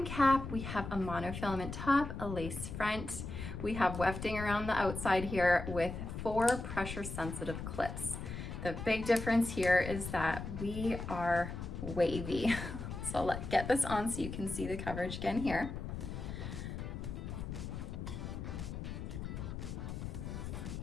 cap, we have a monofilament top, a lace front. We have wefting around the outside here with 4 pressure sensitive clips. The big difference here is that we are wavy. So let's get this on so you can see the coverage again here.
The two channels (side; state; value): left; noise; rumble, 6 dB below the sound